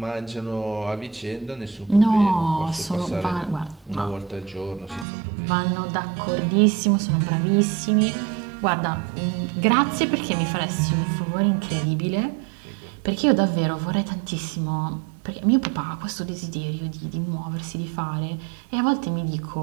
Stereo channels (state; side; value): drops out; left; at 5.1 s